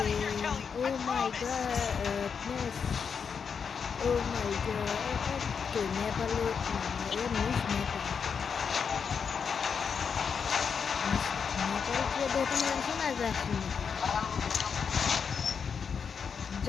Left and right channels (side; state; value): right; quieter; 6.3 dB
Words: ও মাই গডনেস, ও মাই গড, নেপালে এ মিস নেপাল, নেপাল দেখে শোনা যাচ্ছে।